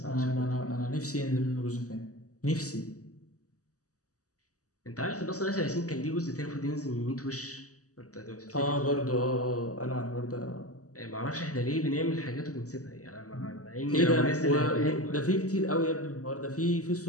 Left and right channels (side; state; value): right; late; 0.66 ms